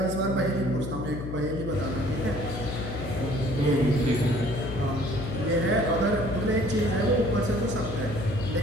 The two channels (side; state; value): left; noise; hum, 6 dB below the sound